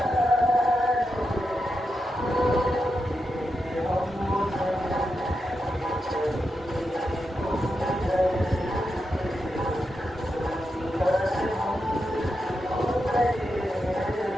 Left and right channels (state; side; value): normal; both; correlation 0.87